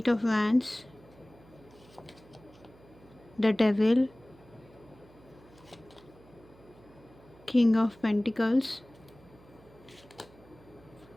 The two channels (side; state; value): right; noise; hum, 25 dB below the sound